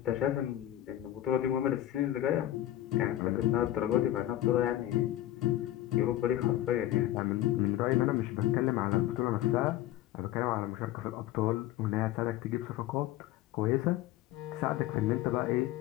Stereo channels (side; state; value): right; quieter; 13.8 dB